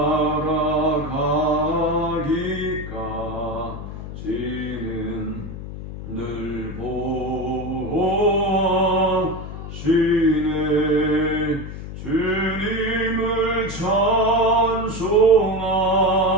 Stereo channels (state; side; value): noise; left; hum, 9 dB below the sound